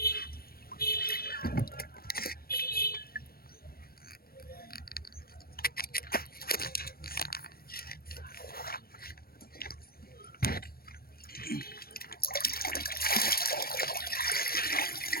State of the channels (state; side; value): late; right; 0.44 ms